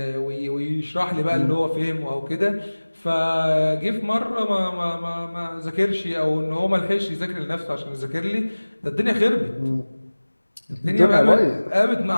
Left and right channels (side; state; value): both; inverted; correlation -1.00